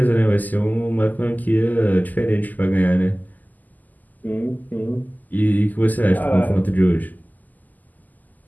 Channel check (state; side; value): late; right; 0.082 ms